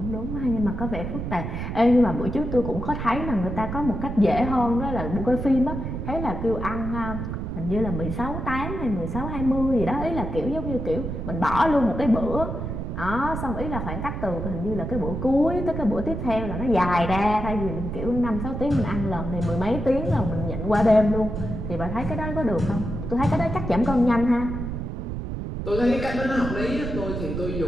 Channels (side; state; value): right; noise; rumble, 5 dB below the sound